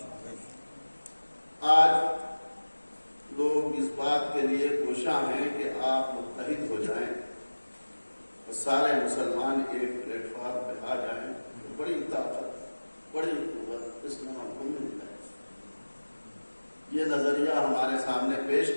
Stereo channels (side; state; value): both; inverted; correlation -1.00